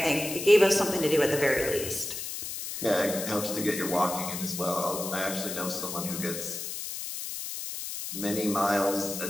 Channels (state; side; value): noise; left; hiss, 6 dB below the sound